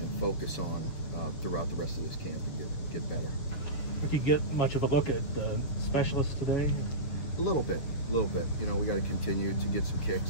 focus on throughout the rest of this camp and get better. Did you get much of a look at the specialists today? A little bit. You know, we got to continue to get some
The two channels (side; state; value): right; late; 6.8 ms